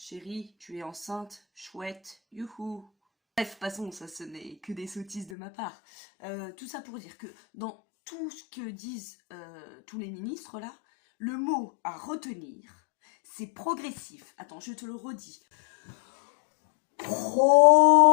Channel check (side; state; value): right; drops out; at 5.3 s